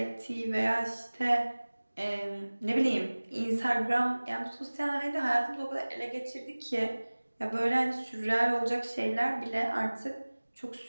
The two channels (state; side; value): inverted; both; correlation -1.00